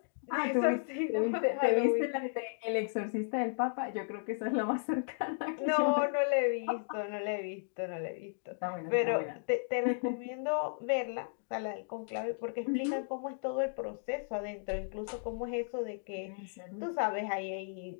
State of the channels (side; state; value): right; silent; digital silence